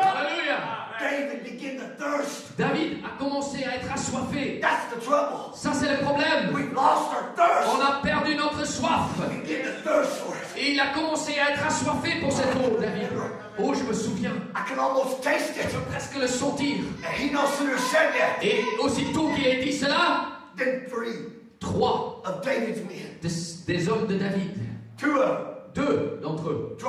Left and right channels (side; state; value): both; identical; correlation 1.00